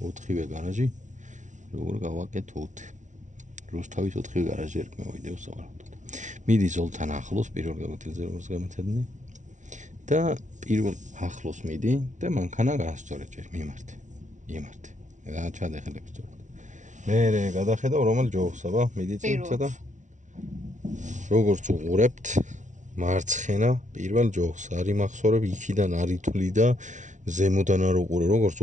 გარაჟი, როგორ გავაკეთოთ. რუსთავის 4-ვე გარაჟი ერქმევა ვიდეოს სავარაუდოდ. მიდი ზოლთან ახლოს პირველ გამოცდილზე როგორც გამეთადნენ და პირველ ახლოს მიდი და მანქანა გაასწორე ჯერ მიმართე. და ჩადეხელებს სწორად. მე გადახედავ რომელ ჯოხს, აბა, მიდი წინ ცოტა. როგორც უყურებთ მარცხენა პირველ ჯოხს არის მახსოვრებ იქიდან არ ითვლი და ზემოდან არ უყურე როგორც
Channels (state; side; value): late; left; 0.36 ms